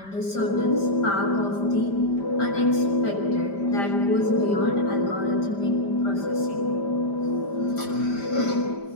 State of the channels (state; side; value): late; right; 5.1 ms